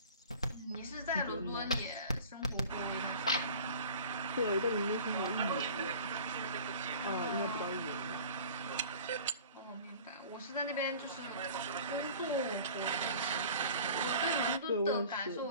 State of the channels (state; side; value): inverted; both; correlation -0.43